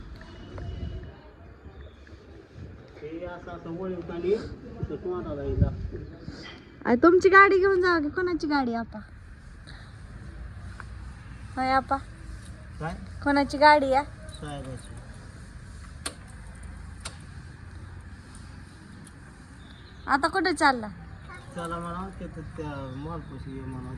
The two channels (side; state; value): both; identical; correlation 1.00